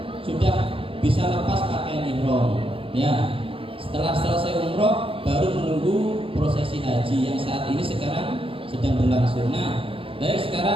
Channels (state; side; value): late; left; 0.26 ms